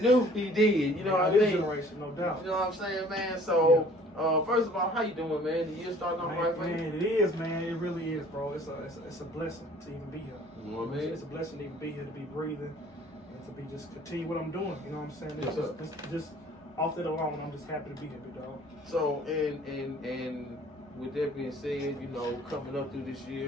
P D, you know what I mean? Generation, no doubt. You know what I'm saying, man? So, first of all, how you doing, man? The year starting off right for you? Man, it is, man. It really is, bro. It's a blessing to even be here. You know what I mean? It's a blessing to even be here, to be breathing, and to be just continue what I'm doing. You know what I'm saying? Yes, sir. It's just off that alone, I'm just happy to be here, big dog. So, and with that being said, you know, coming up through this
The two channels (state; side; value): normal; both; correlation 0.53